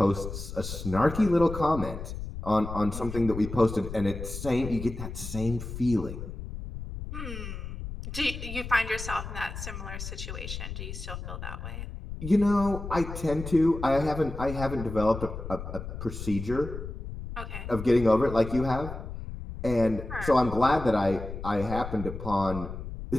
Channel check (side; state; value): left; noise; rumble, 8 dB below the sound